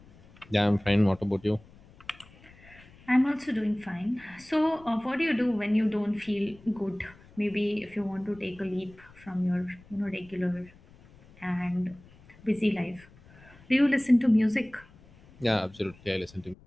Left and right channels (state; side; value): noise; left; rumble, 24 dB below the sound